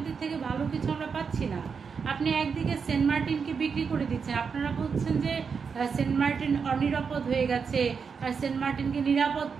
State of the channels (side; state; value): left; quieter; 5.9 dB